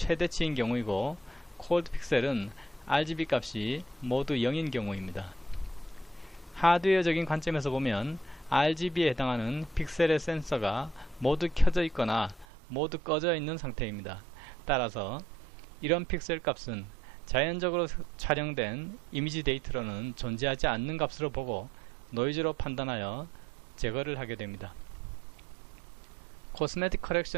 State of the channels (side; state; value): left; drops out; at 12.5 s